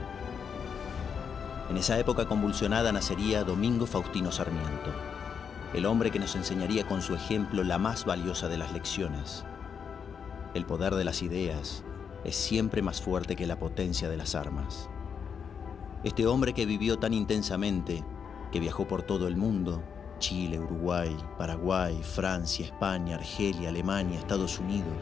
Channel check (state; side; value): quieter; right; 6.8 dB